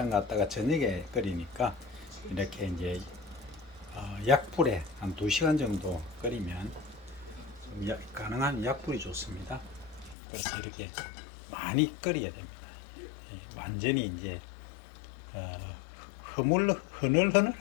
갔다가 저녁에 끓이니까 이렇게 이제 약불에 한 2시간 정도 끓이면 가능한 약불이 좋습니다. 그래서 이렇게 많이 끓여야 됩니다. 완전히 이제 흐물흐늘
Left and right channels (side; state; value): right; drops out; at 10.2 s